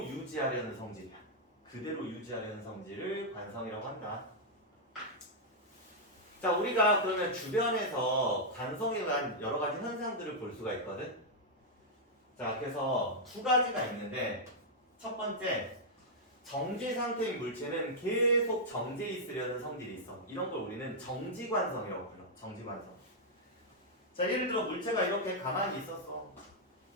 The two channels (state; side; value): normal; both; correlation -0.05